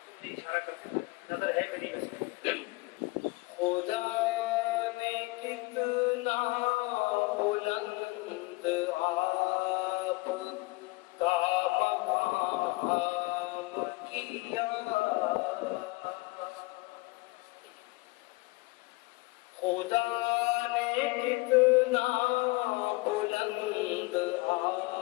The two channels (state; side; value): quieter; right; 23.7 dB